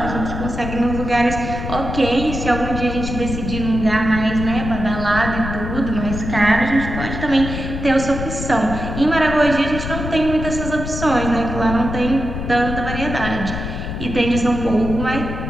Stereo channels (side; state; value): left; noise; rumble, 6 dB below the sound